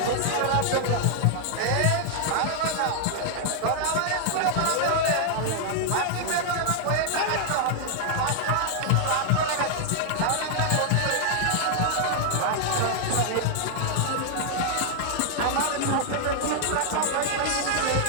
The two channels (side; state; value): both; different; correlation 0.00